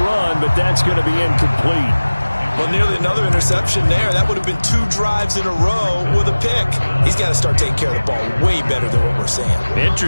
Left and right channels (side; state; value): both; inverted; correlation -1.00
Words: but that's going to be incomplete. Well, nearly another interception there. That would have been 2 drives in a row with a pick. He's got to start taking care of the ball way better than what we're seeing.